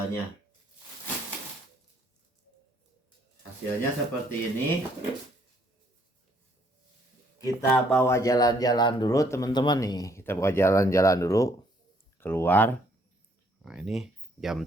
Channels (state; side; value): normal; both; correlation 0.66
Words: Hasilnya seperti ini. Kita bawa jalan-jalan dulu teman-teman nih. Kita bawa jalan-jalan dulu keluar. Nah, ini jam